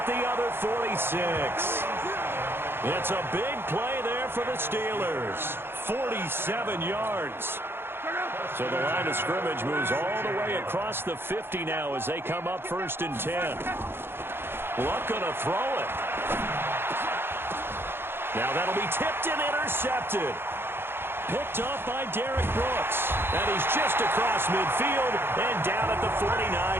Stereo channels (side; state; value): left; late; 0.11 ms